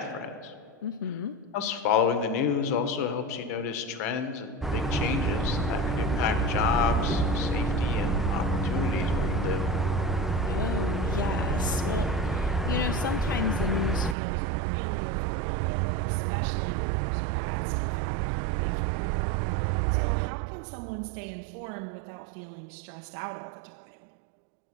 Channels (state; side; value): drops out; left; at 14.2 s